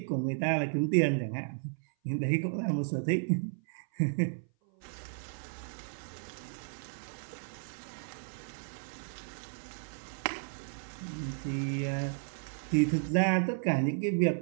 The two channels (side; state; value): left; silent; 55 dB below the other